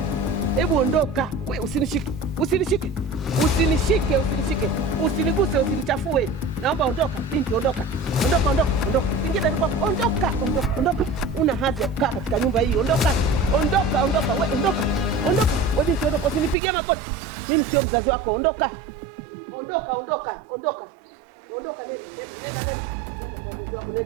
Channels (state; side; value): drops out; left; at 16.6 s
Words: Hebu ondoka. Wewe usinishike. Usinishike. Usinishike, usinishike. Usiniguse, usinichafue. Naomba ondoka, binti ondoka. Ondoka. Singine ni kwako. Ondoka. Una hadhi ya kukaa katika nyumba hii. Ondoka. Wewe ondoka. Wewe binti ondoka, usinipigie makoti. Mimi sio mzazi wako. Ondoka. Ondoka.